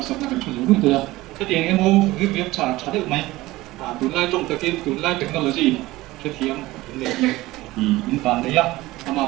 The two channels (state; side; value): quieter; left; 18.6 dB